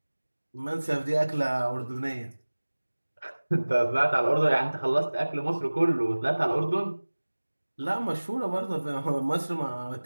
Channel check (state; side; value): inverted; both; correlation -1.00